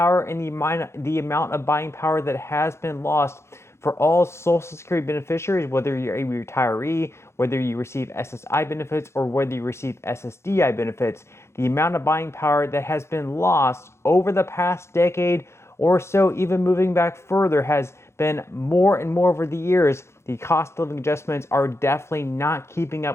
and the amount of buying power that has been lost for all Social Security beneficiaries, whether you're a retiree, whether you receive SSI benefits, or whether you receive SSDI benefits. The amount of buying power that has been lost over the past decade or so, even moving back further, has been more and more over the years. The cost of living adjustments are definitely not keeping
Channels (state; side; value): late; right; 0.13 ms